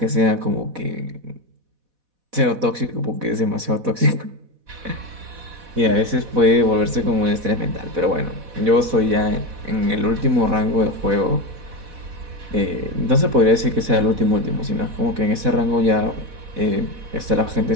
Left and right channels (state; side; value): late; left; 4.1 ms